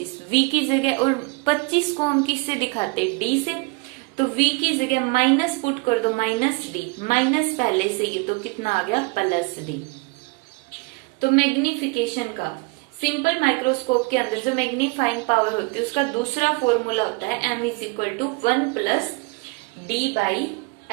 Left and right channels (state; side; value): quieter; left; 27.7 dB